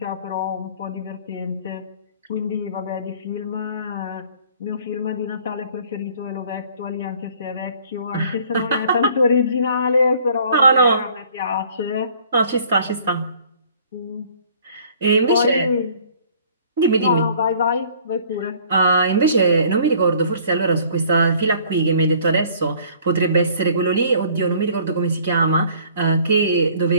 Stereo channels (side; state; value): both; inverted; correlation -0.55